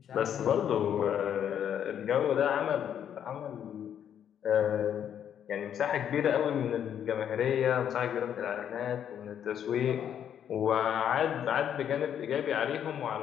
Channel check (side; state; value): right; quieter; 9.2 dB